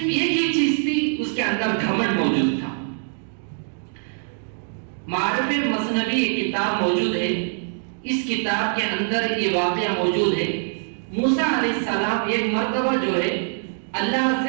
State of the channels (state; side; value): silent; left; digital silence